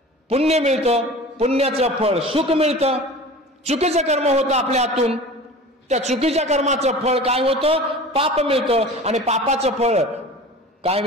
पुण्य मिळतं, पुण्याचं फळ सुख मिळतं. चुकीचं कर्म होतं आपल्या हातून, त्या चुकीच्या कर्माचं फळ काय होतं, पाप मिळतं. आणि पापाचं फळ काय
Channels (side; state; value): both; normal; correlation 0.38